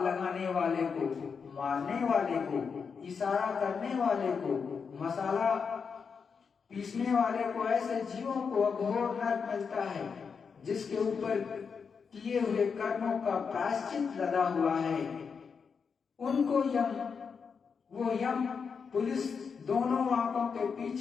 लगाने वाले को, मारने वाले को, इशारा करने वाले को, मसाला पीसने वाले को। ऐसे जीवों को अघोर नरक मिलता है जिसके ऊपर किए हुए कर्मों का प्रायश्चित लगा हुआ है। उनको वो यम पुलिस दोनों आंखों के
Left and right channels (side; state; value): right; quieter; 5.9 dB